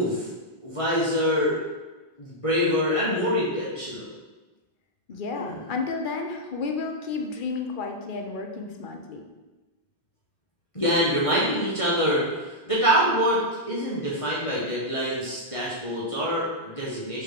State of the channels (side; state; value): right; late; 1.5 ms